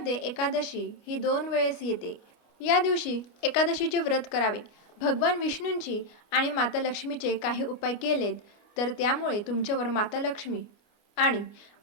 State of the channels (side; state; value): right; late; 29 ms